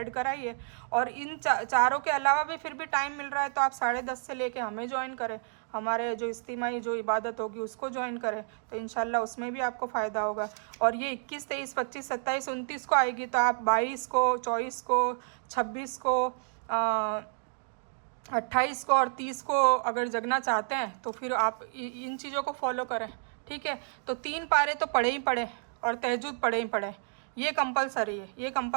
कराई है। और इन चारों के अलावा भी फिर भी टाइम मिल रहा है तो आप 10:30 से लेके हमें ज्वाइन करें, हमारे जो इज्तिमाई जो इबादत होगी उसको ज्वाइन करें, तो इंशाल्लाह उसमें भी आपको फ़ायदा होगा। और ये 21, 23, 25, 27, 29 को आएगी, तो आप 22 को, 24 को, 26 को, 28 को और 30 को अगर जगना चाहते हैं तो फिर आप इन चीज़ों को फॉलो करें, ठीक है। तो 3 पारे तो पढ़े ही पढ़े और तहज्जुद पढ़े ही पढ़े, ये कंपलसरी है, ये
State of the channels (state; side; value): silent; left; digital silence